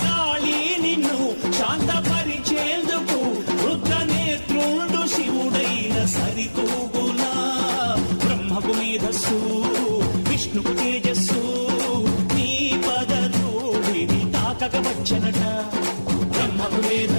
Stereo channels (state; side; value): inverted; both; correlation -1.00